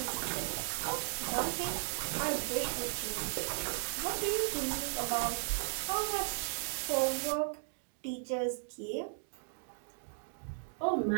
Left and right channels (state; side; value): silent; left; digital silence